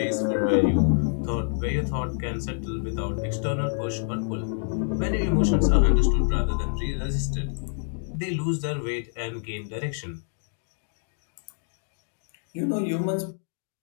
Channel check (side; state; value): right; silent; digital silence